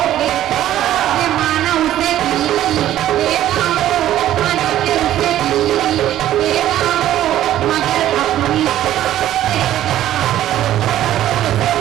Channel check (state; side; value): quieter; left; 12.7 dB